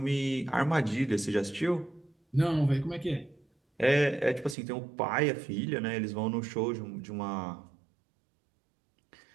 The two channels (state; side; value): drops out; left; at 4.5 s